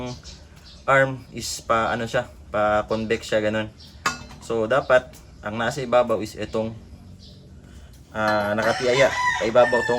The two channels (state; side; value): identical; both; correlation 1.00